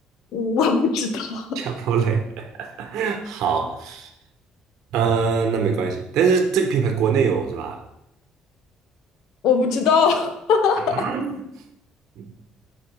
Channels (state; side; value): normal; both; correlation 0.48